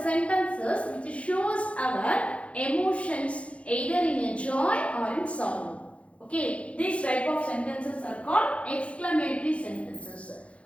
sentences which shows our emotions either in a joy or in sorrow. okay, these type of sentences are called exclamatory sentences.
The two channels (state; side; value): late; right; 0.062 ms